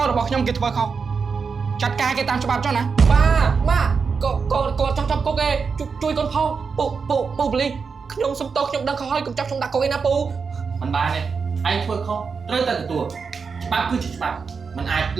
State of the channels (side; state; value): left; quieter; 5.4 dB